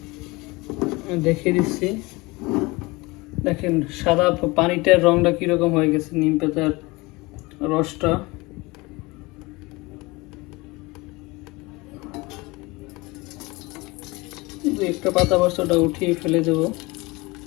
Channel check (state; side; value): quieter; right; 23.5 dB